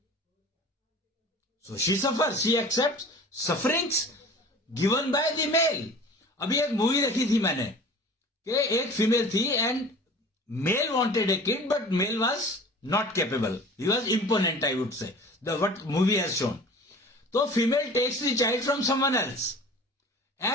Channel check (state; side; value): normal; both; correlation 0.42